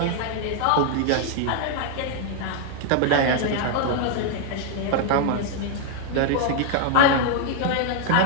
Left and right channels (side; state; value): both; different; correlation 0.00